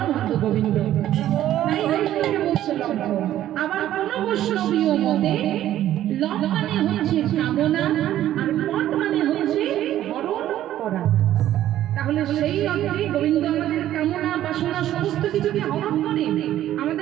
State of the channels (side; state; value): left; quieter; 12.6 dB